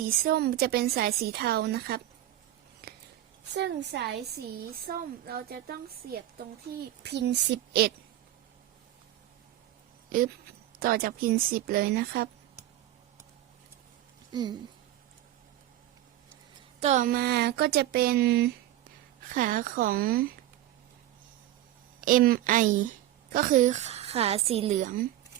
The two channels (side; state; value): left; quieter; 13.9 dB